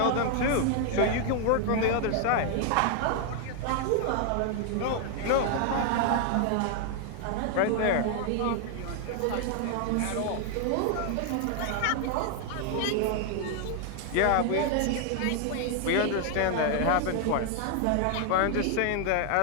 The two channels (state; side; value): different; both; correlation 0.00